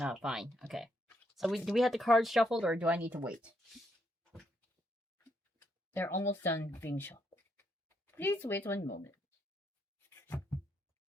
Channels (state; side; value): normal; both; correlation 0.76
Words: fine. Okay. So do we have the cards shuffled, or do I need to wait? They're almost done being shuffled. Please wait 1 moment.